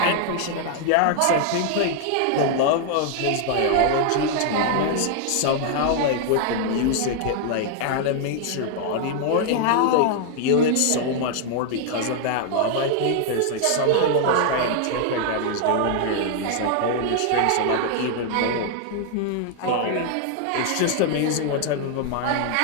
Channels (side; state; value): both; different; correlation 0.00